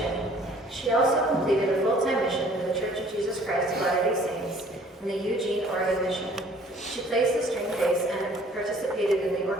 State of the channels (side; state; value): both; normal; correlation 0.55